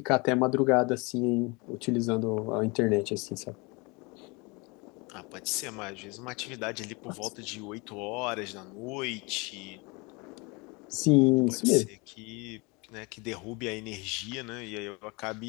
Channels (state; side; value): quieter; right; 27.8 dB